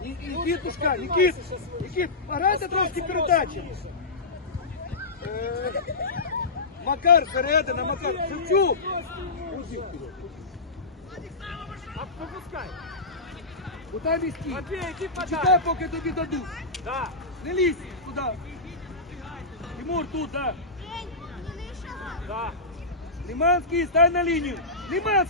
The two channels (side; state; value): right; quieter; 3.3 dB